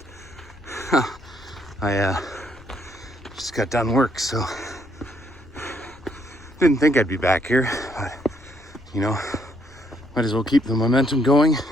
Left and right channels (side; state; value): left; noise; rumble, 22 dB below the sound